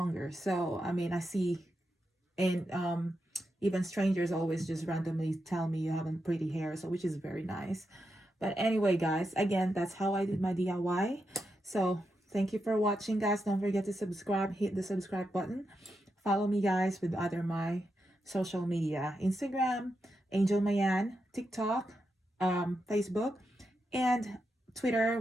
So I mean, I see, and even strangers always just randomly tell me you have a pretty hair, so which is very nice. But anyway, guys, again, that's how I did my DIY. So thank you for watching, guys. Don't forget to subscribe, hit the subscribe button. Follow me, guys, with other my social media: Instagram, Angel Mayan; TikTok, Facebook, and Twitter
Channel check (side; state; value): both; normal; correlation 0.86